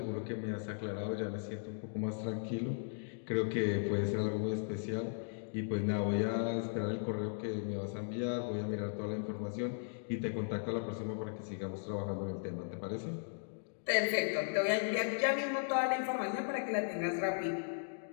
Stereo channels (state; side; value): silent; right; digital silence